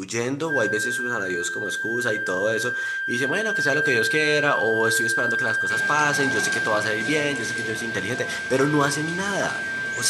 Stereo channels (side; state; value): both; identical; correlation 1.00